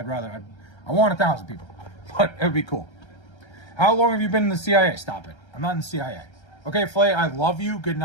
I want 1,000 people, but it would be cool. How long have you been in the CIA? Stop it. I'm not in the CIA. Okay, Flay, I love you. Good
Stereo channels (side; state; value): right; late; 1.3 ms